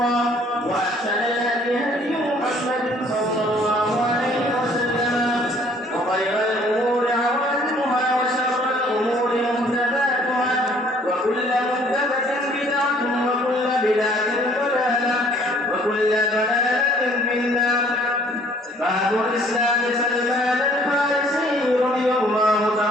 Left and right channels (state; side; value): normal; both; correlation 0.58